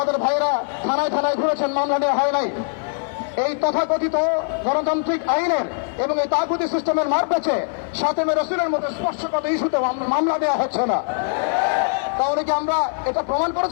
ভাইরা থানায় থানায় ঘুরেছেন, মামলা নেওয়া হয় নাই। এই তথাকথিত গণতান্ত্রিক আইনের এবং এই তাগুতি সিস্টেমের মারপ্যাচে সাতমে রাসূলের মধ্যে স্পর্শগত ইস্যুতে মামলা দেওয়া হচ্ছে না। তাহলে কি আমরা এটা প্রমাণ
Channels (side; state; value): right; silent; 59 dB below the other